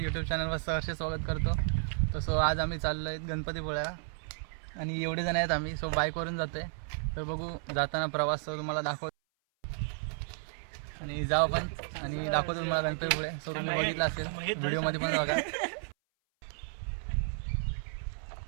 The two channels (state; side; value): silent; left; 56 dB below the other